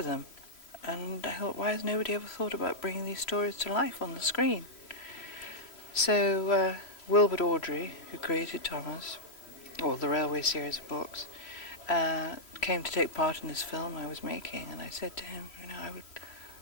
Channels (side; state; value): right; late; 3.0 ms